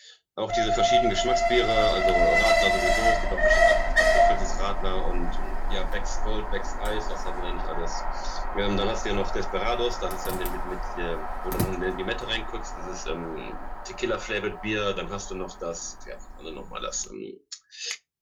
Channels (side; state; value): both; identical; correlation 1.00